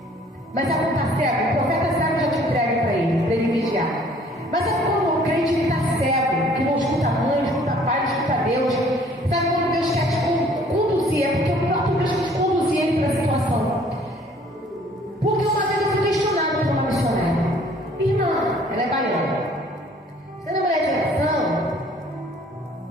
Mas sabe quando está cego? O profeta sabe já te entrega para ele vigiar. Mas sabe quando o crente está cego, que não escuta a mãe, não escuta a pai, não escuta a Deus? Sabe quando Deus quer te conduzir? É porque o próprio Deus quer te conduzir ele para a situação. Porque uma vez eu fui questionada por uma missionária. Irmã, ela é baiana. Você não é mulher de oração?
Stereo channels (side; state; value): both; normal; correlation 0.57